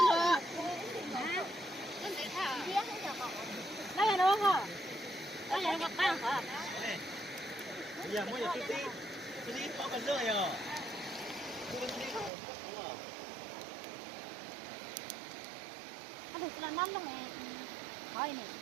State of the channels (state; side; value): drops out; left; at 12.3 s